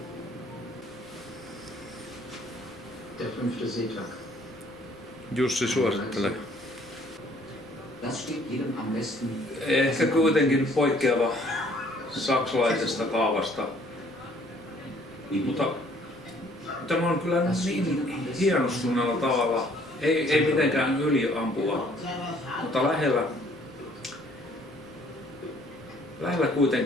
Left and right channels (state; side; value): normal; both; correlation 0.60